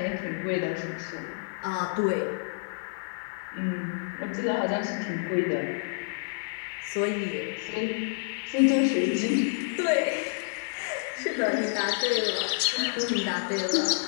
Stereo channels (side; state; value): right; silent; digital silence